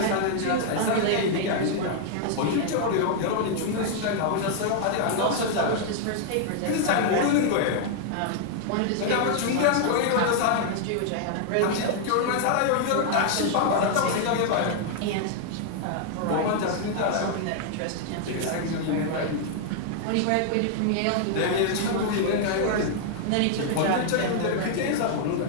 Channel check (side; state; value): both; different; correlation 0.00